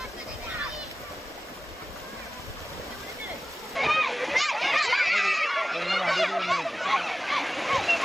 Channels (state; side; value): normal; both; correlation 0.96